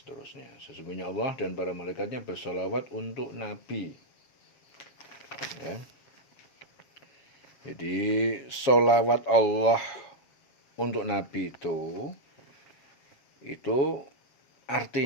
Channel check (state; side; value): late; right; 7.5 ms